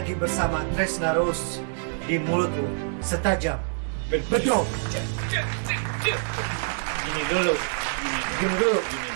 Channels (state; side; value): silent; left; 61 dB below the other